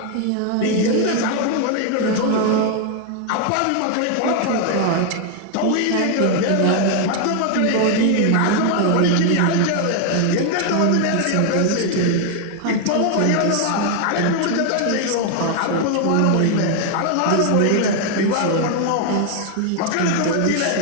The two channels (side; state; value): both; different; correlation 0.00